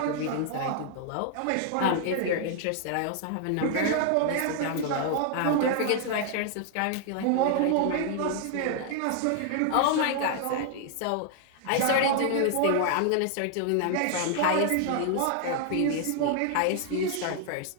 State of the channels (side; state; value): both; different; correlation 0.00